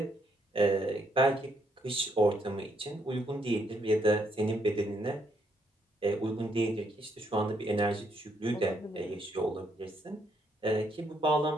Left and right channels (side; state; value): both; normal; correlation 0.73